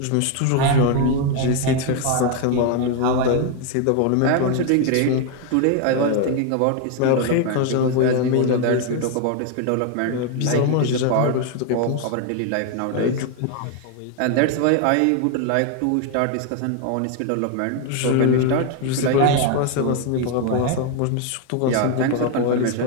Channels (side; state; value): both; different; correlation 0.01